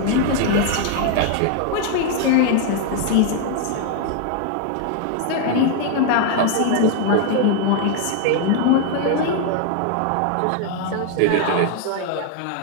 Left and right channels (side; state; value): both; different; correlation 0.00